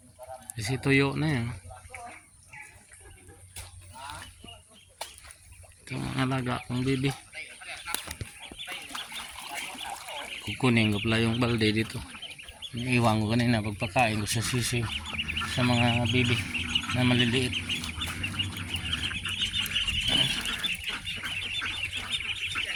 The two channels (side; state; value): both; identical; correlation 1.00